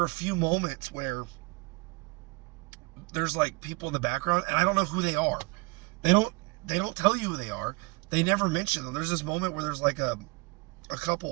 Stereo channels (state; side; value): quieter; left; 26.7 dB